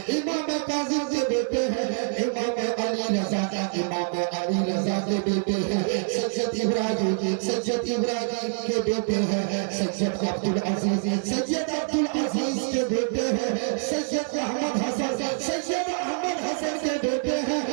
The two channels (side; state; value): left; silent; 61 dB below the other